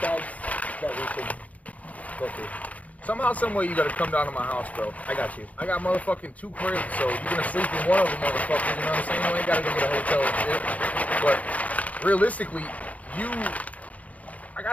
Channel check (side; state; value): right; late; 0.070 ms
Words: bags that we could go through. Somehow, some way, you gotta come down to my house, bro. I got you. I got motherfucking 2 cribs, so you're gonna sleep in one of them, motherfuckers. You know what I'm saying? You ain't gotta go get a hotel and shit. But realistically, I